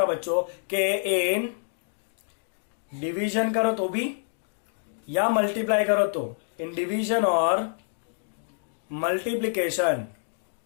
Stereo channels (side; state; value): right; silent; digital silence